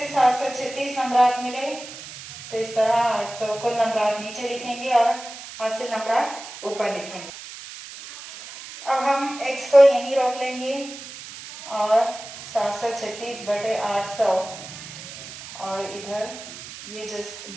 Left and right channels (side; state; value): right; noise; hiss, 13 dB below the sound